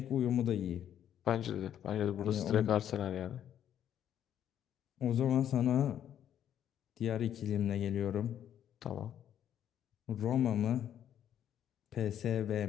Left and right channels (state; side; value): quieter; right; 10.2 dB